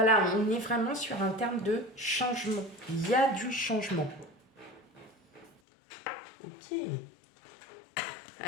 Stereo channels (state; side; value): drops out; right; at 5.5 s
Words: on est vraiment sur un terme de changement. Il y a du changement. Ok.